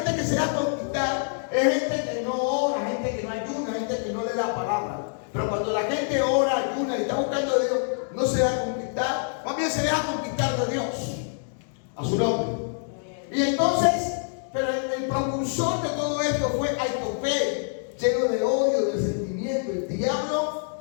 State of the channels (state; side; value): silent; right; digital silence